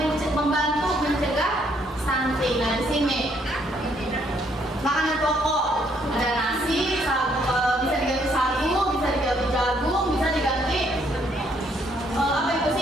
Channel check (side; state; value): both; normal; correlation 0.69